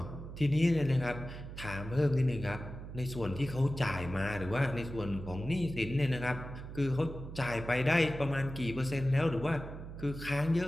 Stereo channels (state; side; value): noise; right; hum, 10 dB below the sound